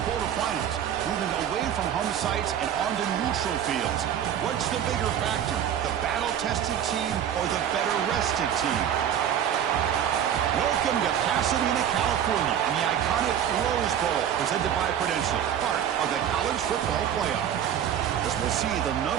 quarterfinals, moving away from home sites and onto neutral fields. What's the bigger factor, the battle-tested team or the better-rested team? Welcome to Pasadena, California, and the iconic Rose Bowl, presented by Prudential, part of the college football playoff. As we'll see the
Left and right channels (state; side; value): quieter; left; 9.6 dB